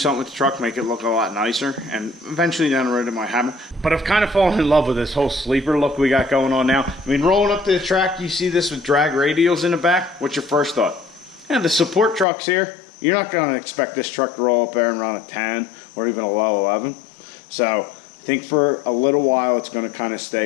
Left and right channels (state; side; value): drops out; right; at 12.2 s